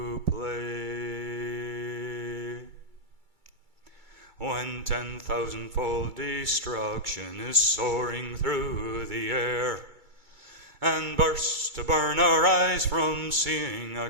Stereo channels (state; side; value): late; left; 2.3 ms